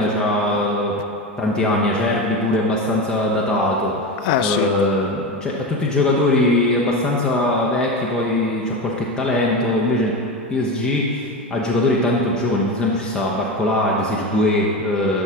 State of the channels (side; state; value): both; normal; correlation 0.21